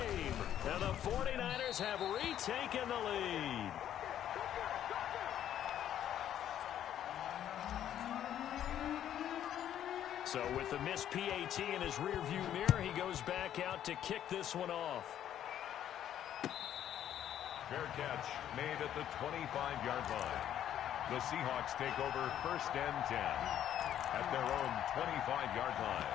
And the 49ers have retaken the lead. So with the missed PAT in his rearview mirror, he goes back out to kick this one off. Fair catch made at the 25-yard line. The Seahawks take over 1st and 10 at their own 25-yard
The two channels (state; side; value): quieter; right; 10.8 dB